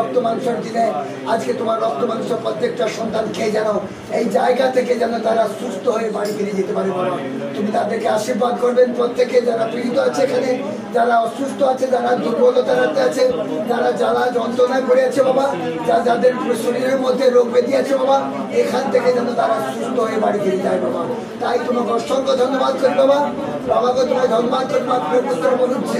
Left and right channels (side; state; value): both; identical; correlation 1.00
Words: মাংসের দিনে আজকে তোমার রক্ত মাংস প্রত্যেকটা সন্তান খেয়ে যেন এই জায়গা থেকে যেন তারা সুস্থ হয়ে বাড়ি ফিরে যেতে পারে বাবা। তুমি তাদেরকে আশীর্বাদ করবেন। প্রত্যেকে যারা পীড়িত আছে এখানে, যারা অসুস্থ আছে, যারা দুর্বলতাতে আছে, যারা জ্বালা যন্ত্রণায় পড়ে আছে বাবা, যাদের শরীরের মধ্যে রোগ ব্যাধি আছে বাবা, এখান থেকে যেন তারা সুস্থ হয়ে বাড়ি ফিরে যায় বাবা। তাই তোমাকে অসংখ্য ধন্যবাদ করি বাবা। বাবাকে তোমায় ধন্যবাদ করি। পুত্র বলুন